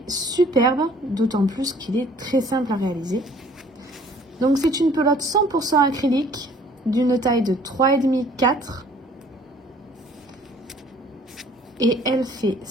superbe, d'autant plus qu'il est très simple à réaliser. Donc, c'est une pelote 100% acrylique d'une taille de 3,5-4. Et elle fait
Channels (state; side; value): normal; both; correlation 0.55